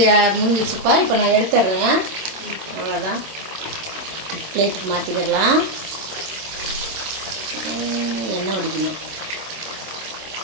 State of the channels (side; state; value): left; late; 27 ms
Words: முடிஞ்சிச்சுப்பா. இப்போ நான் எடுத்துடுறேன். அவ்வளோதான். பிளேட்டுக்கு மாற்றிக்கிடலாம். எண்ணெய் வடிக்கணும்.